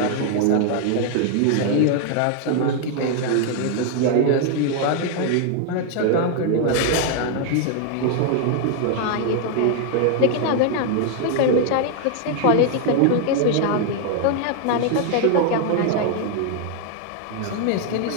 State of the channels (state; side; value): different; both; correlation 0.00